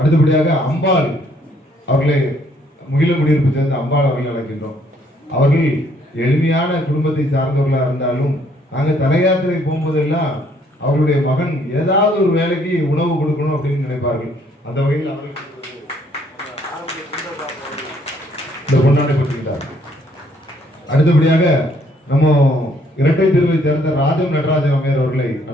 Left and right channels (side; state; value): both; normal; correlation 0.66